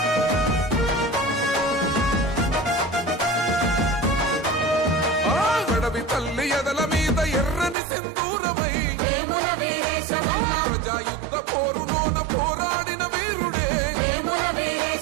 అడవి తల్లి ఎదల మీద ఎర్రని సింధూరమై ప్రజాయుద్ధ పోరులోన పోరాడిన వీరుడే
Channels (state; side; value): drops out; left; at 7.8 s